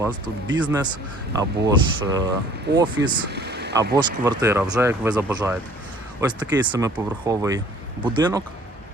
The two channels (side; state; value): both; normal; correlation 0.54